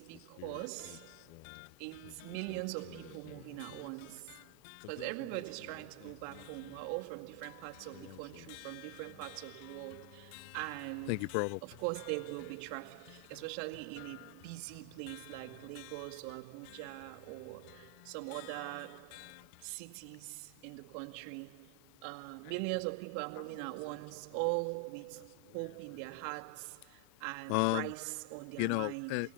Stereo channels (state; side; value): different; both; correlation 0.00